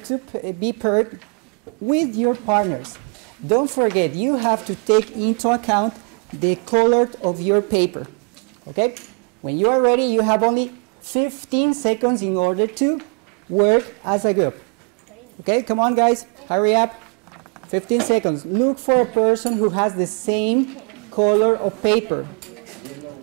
be paired with your partners. Don't forget, you have to take into account the color of your paper. Okay? When you are ready, you have only 15 seconds in order to work as a group. Okay, come on guys, hurry up. 15 seconds. Look for a person who has the same color of paper.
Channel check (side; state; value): left; quieter; 37.9 dB